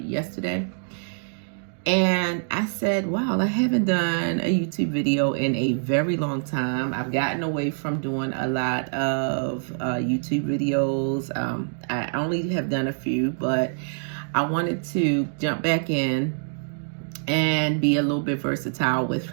And I said, wow, I haven't done a YouTube video in a very long time. I've gotten away from doing a lot of YouTube videos. I only have done a few, but I wanted to jump back in and be a little bit versatile with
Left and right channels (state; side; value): silent; left; digital silence